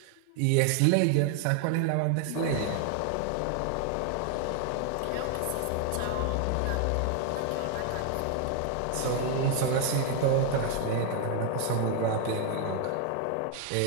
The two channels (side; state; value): both; different; correlation 0.00